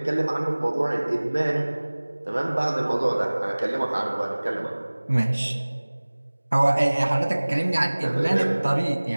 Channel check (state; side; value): inverted; both; correlation -1.00